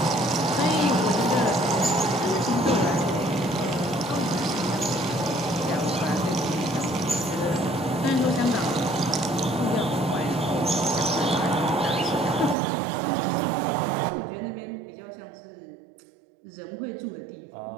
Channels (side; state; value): left; drops out; at 12.6 s